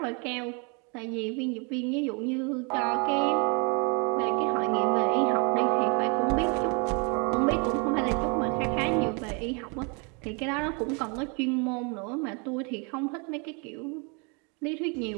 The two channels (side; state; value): left; quieter; 33.6 dB